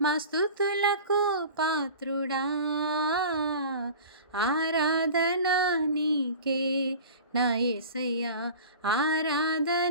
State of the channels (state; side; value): inverted; both; correlation -0.38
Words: మా స్తుతులకు పాత్రుడా. ఆరాధన నీకే నా యేసయ్యా,